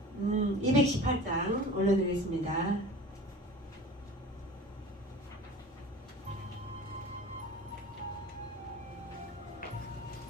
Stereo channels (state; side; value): normal; both; correlation 0.38